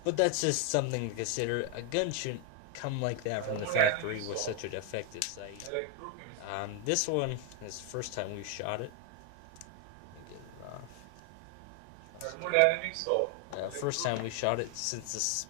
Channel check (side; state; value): both; different; correlation 0.00